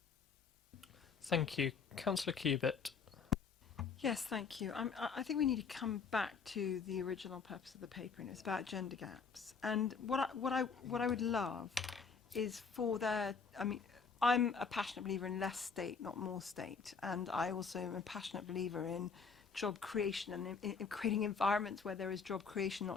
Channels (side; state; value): right; quieter; 5.5 dB